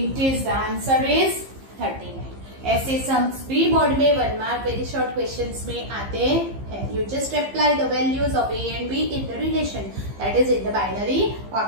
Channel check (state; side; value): late; left; 15 ms